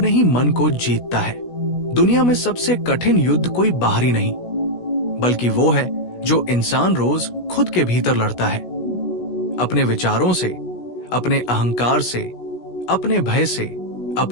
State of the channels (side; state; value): right; late; 16 ms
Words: ही मन को जीतता है। दुनिया में सबसे कठिन युद्ध कोई बाहरी नहीं, बल्कि वो है जो इंसान रोज खुद के भीतर लड़ता है, अपने विचारों से, अपने अहंकार से, अपने भय से,